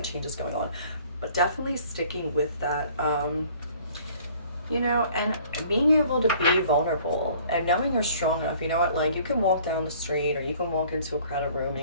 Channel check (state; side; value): inverted; both; correlation -0.54